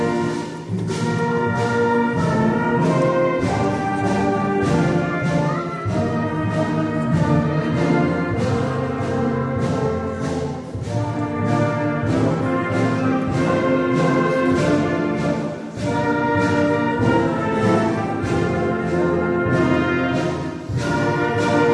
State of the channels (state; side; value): identical; both; correlation 1.00